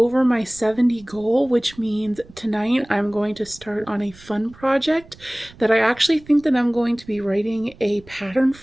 my 70 goal, which means tonight I'm going to start on a fun project that I actually think that I'm going to be writing a pattern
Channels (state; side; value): noise; right; rumble, 23 dB below the sound